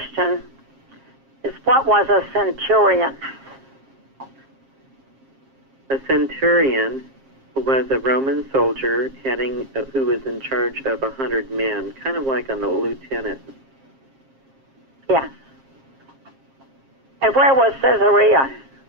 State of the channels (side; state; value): left; late; 7.5 ms